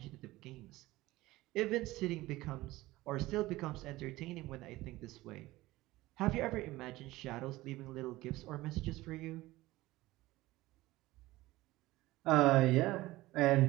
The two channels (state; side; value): quieter; left; 18.3 dB